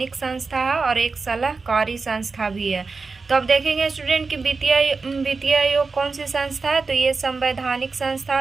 संस्था है और एक सलाहकारी संस्था भी है। तो अब देखेंगे स्टूडेंट कि वित्तीय आयोग कौन सी संस्था है? तो ये संवैधानिक संस्था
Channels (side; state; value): left; quieter; 4.3 dB